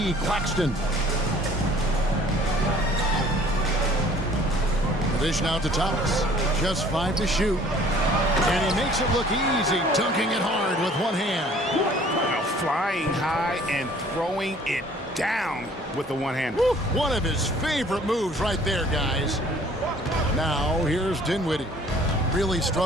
Claxton. Dish now to Thomas. Just 5 to shoot. And he makes it look easy, dunking it hard with one hand. Now flying high and throwing it down with the one hand. Woo, one of his favorite moves right there, guys. Now here's Dinwiddie. Really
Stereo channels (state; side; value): normal; both; correlation 0.54